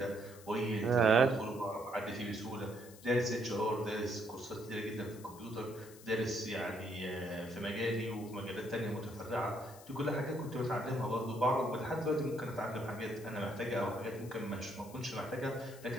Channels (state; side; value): noise; left; hiss, 20 dB below the sound